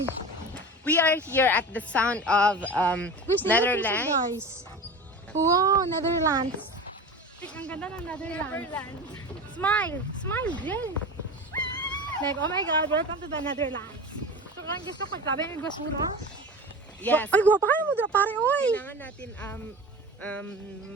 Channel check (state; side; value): normal; both; correlation 0.32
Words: We are here at the sound of Netherlands. Guys. Wow, Netherlands. Ang ganda ng Netherlands. Smile, girl. Like, oh my God, welcome to the Netherlands. So, kung gusto ko, grabe yung basura. Yes. Ay, guwapa kayo mo dira, pare, oy. Kailangan natin